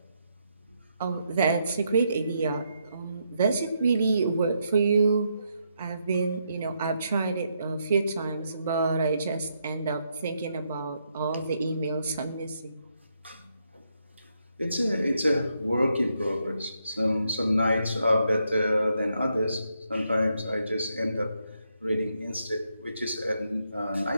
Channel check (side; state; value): both; inverted; correlation -0.79